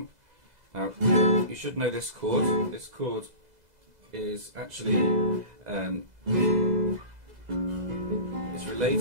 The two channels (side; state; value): left; late; 2.0 ms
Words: Now, you should know this chord. This chord is actually it's